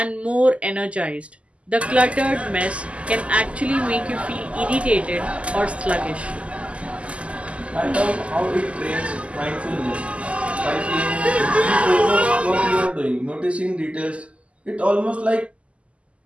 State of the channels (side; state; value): left; late; 0.060 ms